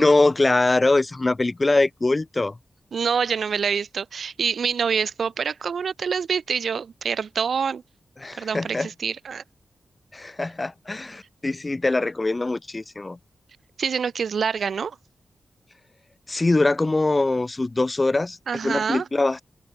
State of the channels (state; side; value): normal; both; correlation 0.92